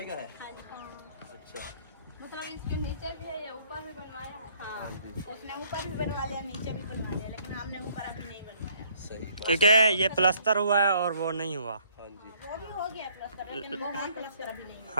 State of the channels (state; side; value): inverted; both; correlation -0.63